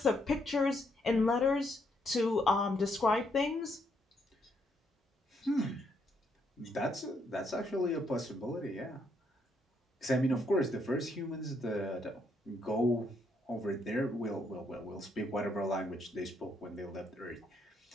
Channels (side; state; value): both; normal; correlation 0.74